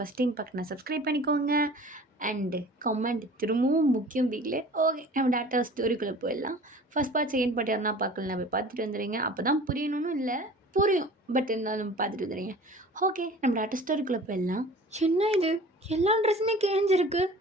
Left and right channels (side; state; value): both; normal; correlation 0.43